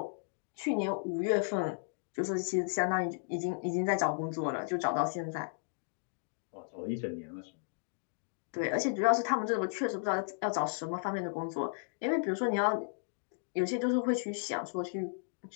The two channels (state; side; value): silent; right; digital silence